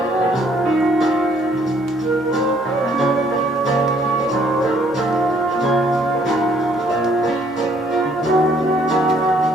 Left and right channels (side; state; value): both; normal; correlation 0.64